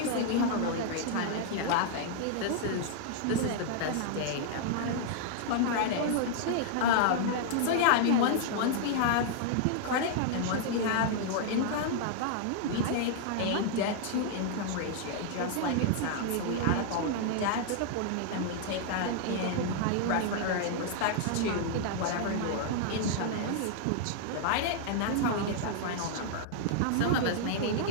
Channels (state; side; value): different; both; correlation -0.01